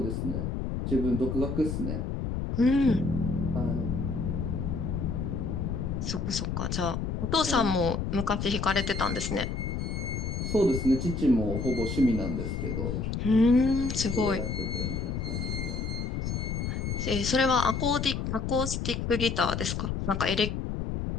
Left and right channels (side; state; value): left; noise; rumble, 2 dB below the sound